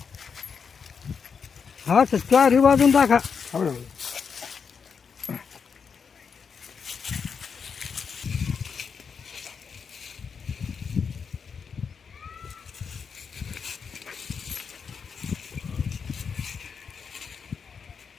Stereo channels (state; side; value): quieter; right; 6.1 dB